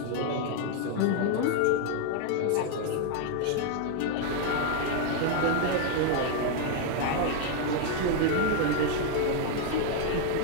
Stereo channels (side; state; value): both; different; correlation 0.00